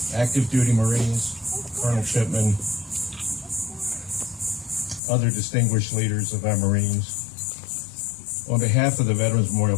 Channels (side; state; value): right; drops out; at 5.0 s